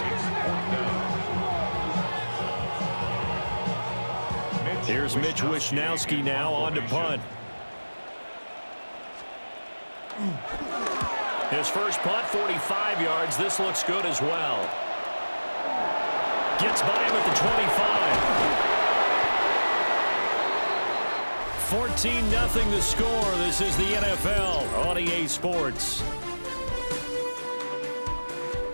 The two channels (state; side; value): inverted; both; correlation -1.00